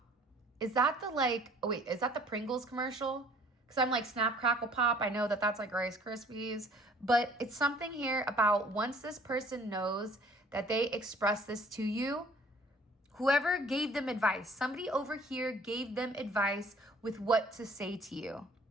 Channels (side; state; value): both; normal; correlation 0.55